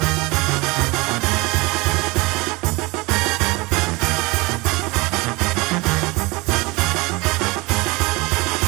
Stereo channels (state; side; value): quieter; left; 24.6 dB